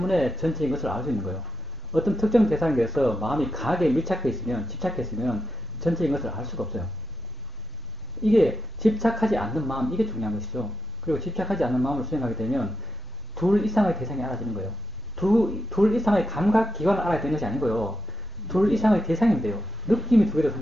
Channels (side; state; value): left; noise; hum, 30 dB below the sound